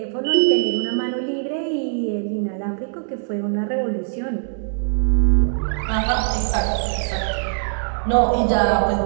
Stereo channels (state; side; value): silent; left; digital silence